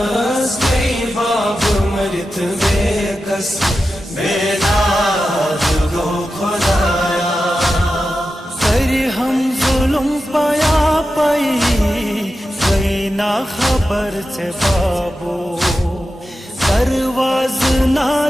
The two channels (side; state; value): both; normal; correlation 0.91